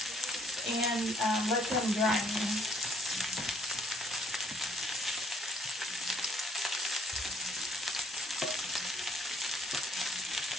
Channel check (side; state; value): both; normal; correlation 0.66